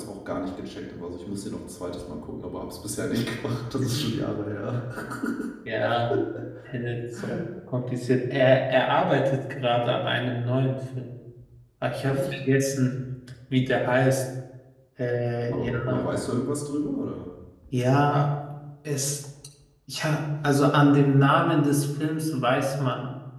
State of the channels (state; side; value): identical; both; correlation 1.00